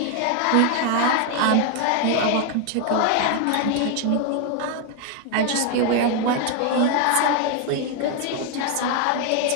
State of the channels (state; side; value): different; both; correlation 0.01